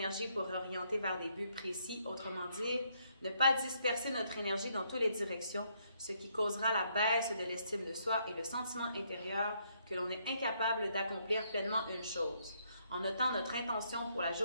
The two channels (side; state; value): both; inverted; correlation -0.72